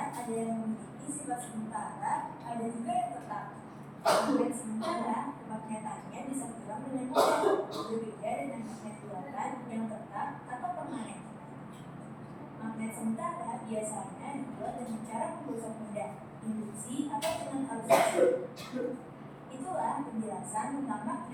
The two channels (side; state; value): both; identical; correlation 1.00